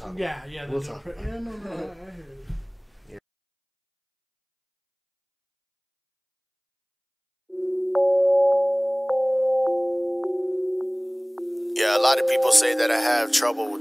Yeah, we'll talk. I hear it. Yeah, a lot of people say that I have trouble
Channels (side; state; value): both; identical; correlation 1.00